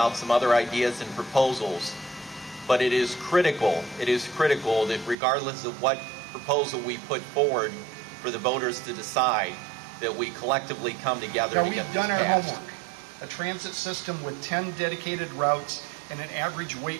some other ideas and proposals. But it is critical that regardless of what proposal we put forward for the voters to decide, that we collectively come together to get this passed. We've done our homework. A transit system with 10 dedicated routes and an average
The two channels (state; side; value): drops out; left; at 5.2 s